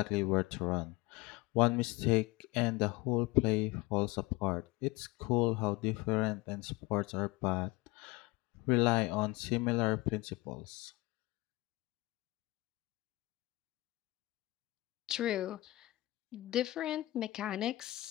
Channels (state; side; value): quieter; right; 20.4 dB